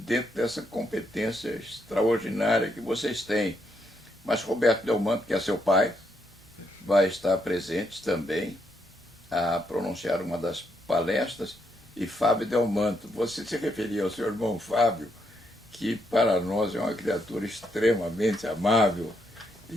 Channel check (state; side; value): normal; both; correlation 0.77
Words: dessa competência extraordinária que vocês têm. Mas Roberto Delmanto, que é seu pai, vai estar presente também a pronunciar uma das palestras, e Fábio Delmanto. Você se referia ao seu irmão Fábio, que para nós é uma criatura extremamente amável